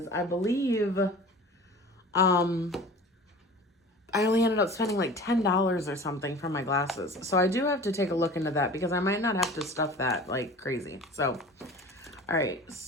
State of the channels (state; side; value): normal; both; correlation 0.40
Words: I believe I only ended up spending like $10 or something for my glasses. So I do have to take a look into that because I might not have to stuff that like crazy. So, all right.